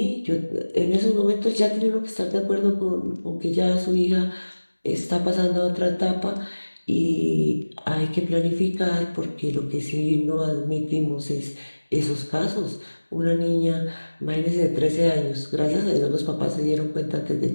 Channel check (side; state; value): both; inverted; correlation -1.00